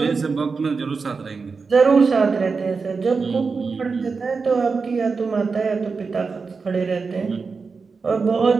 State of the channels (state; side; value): quieter; left; 4.8 dB